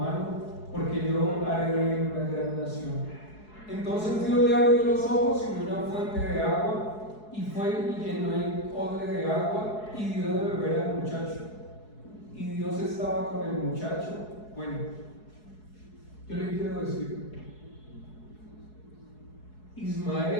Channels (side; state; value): right; late; 4.7 ms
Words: porque yo haré de él una gran nación. Entonces Dios le abrió los ojos y vio una fuente de agua, y fue y llenó el odre de agua y dio de beber al muchacho. Y Dios estaba con el muchacho. Bueno, yo le quiero decir,